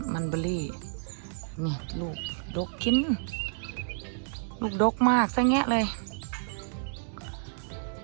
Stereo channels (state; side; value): silent; left; digital silence